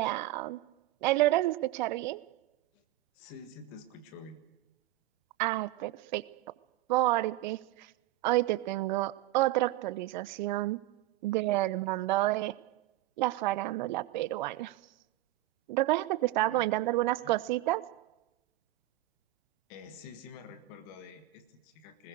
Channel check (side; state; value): left; quieter; 16.2 dB